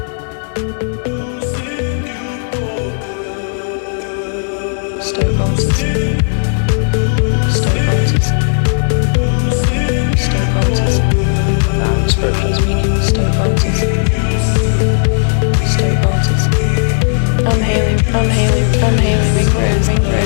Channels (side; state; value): right; silent; digital silence